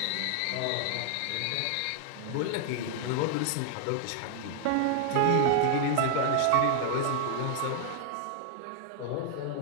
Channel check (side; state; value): both; different; correlation -0.01